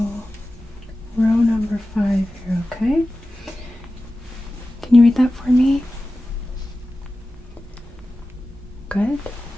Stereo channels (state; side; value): normal; both; correlation 0.95